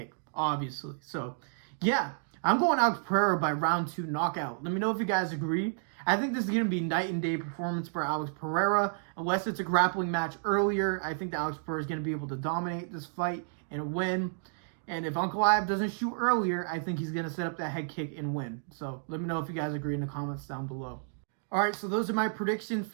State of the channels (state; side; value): silent; left; digital silence